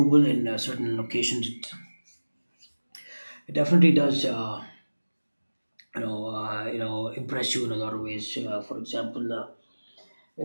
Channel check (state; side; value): inverted; both; correlation -1.00